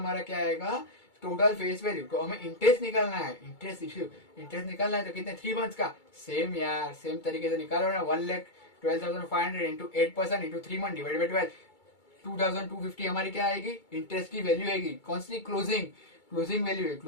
क्या आएगा, टोटल फेस वैल्यू। तो हमें इंटरेस्ट निकालना है, इंटरेस्ट निकालना है, तो कितने 3 मंथ्स का, सेम यार, सेम तरीके से निकालो ना। 1,12,500 into 8% into 3 month divide by 12, 2,250 हमारी क्या आएगी, इंटरेस्ट की वैल्यू आएगी। कौन सी, क्लोजिंग वैल्यू है,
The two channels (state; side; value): late; right; 2.3 ms